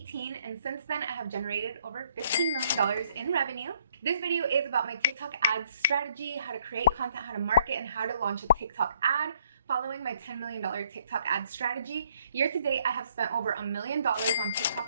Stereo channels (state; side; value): inverted; both; correlation -0.67